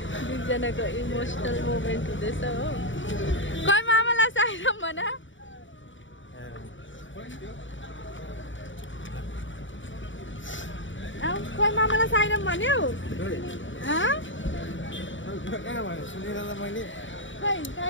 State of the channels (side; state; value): right; late; 0.55 ms